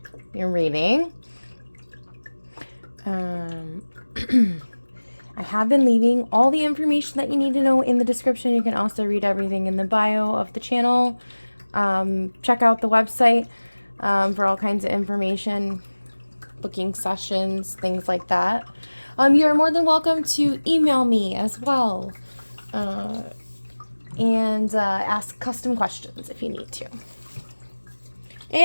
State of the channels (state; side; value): inverted; both; correlation -1.00